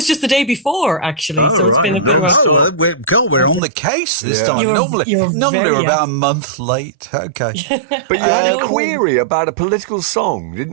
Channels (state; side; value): drops out; left; at 3.6 s